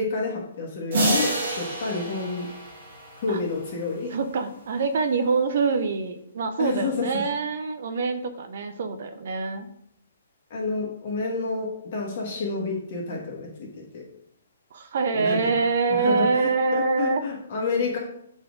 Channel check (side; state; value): both; inverted; correlation -0.60